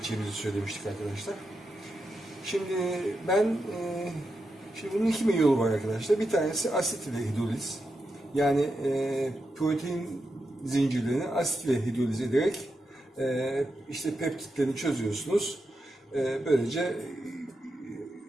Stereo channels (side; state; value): both; normal; correlation 0.87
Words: söylemiştik arkadaşlar. Şimdi bunun iki yolu var arkadaşlar. Bir tanesi asit ile hidroliz. Yani protein zincirlerini asit ile hidroliz ederek işte peptitlerini çözüyorsunuz. Böylece